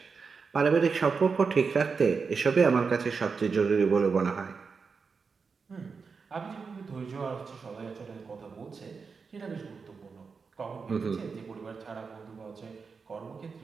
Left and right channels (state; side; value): quieter; left; 5.2 dB